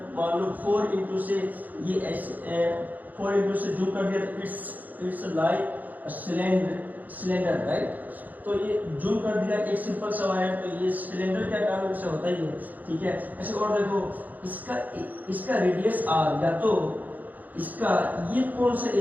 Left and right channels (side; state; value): left; late; 0.082 ms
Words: मान लो 4 इंटू से ये ऐसे 4 इंटू से जूम कर दिया तो इट्स लाइक सिलेंडर राइट। तो ये जूम कर दिया एक सिंपल सा वायर, तो ये सिलेंडर क्या काम से होता ही है, ठीक है। ऐसे और देखो इसका रेडियस r, या तो इसका ये कौन सा